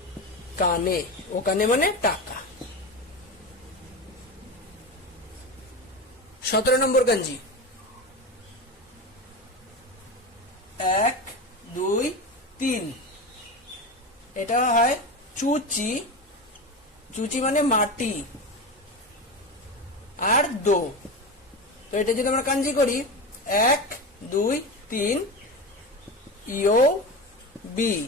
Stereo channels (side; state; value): both; normal; correlation 0.23